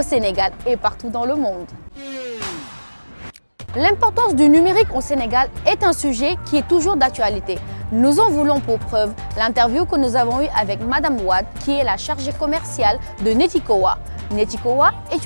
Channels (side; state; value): both; inverted; correlation -1.00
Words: Sénégal et partout dans le monde. L'importance du numérique au Sénégal est un sujet qui est toujours d'actualité. Nous en voulons pour preuve l'interview que nous avons eue avec Madame Wade, qui est la chargée commerciale de Netikowa. Netikowa est